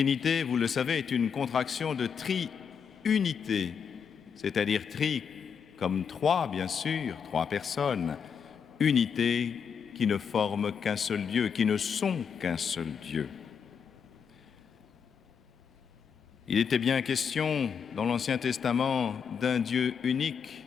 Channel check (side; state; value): right; quieter; 6.8 dB